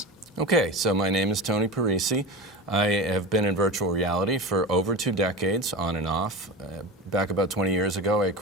Okay, so my name is Tony Parisi. I have been in virtual reality for over 2 decades, on and off. Back about 20 years ago, I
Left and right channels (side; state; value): both; normal; correlation 0.26